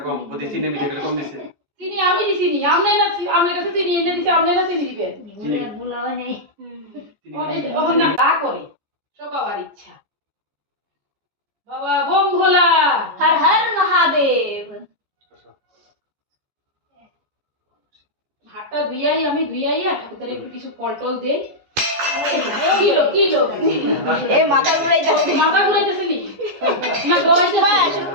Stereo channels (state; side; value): late; left; 14 ms